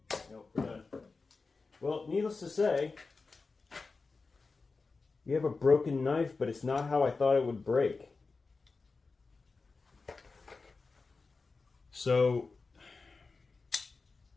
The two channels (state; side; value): quieter; right; 4.1 dB